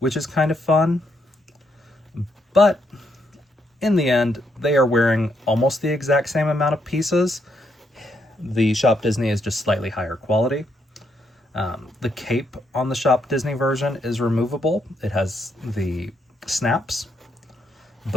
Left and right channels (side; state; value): both; normal; correlation 0.77